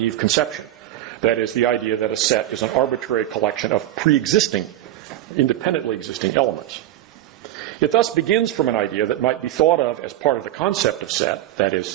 conception. That is, the idea that a set is an arbitrary collection of pre-existing, independently existing elements. It thus begins from an idea that might be thought of as part of the concept of set, that is,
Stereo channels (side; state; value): left; quieter; 13.7 dB